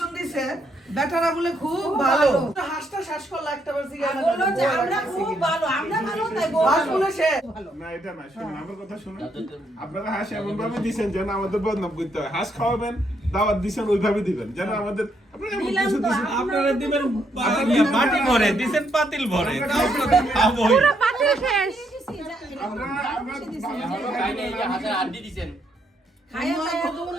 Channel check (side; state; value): both; normal; correlation 0.75